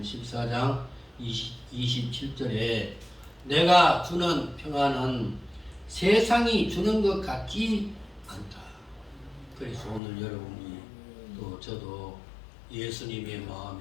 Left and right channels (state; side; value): drops out; right; at 10.0 s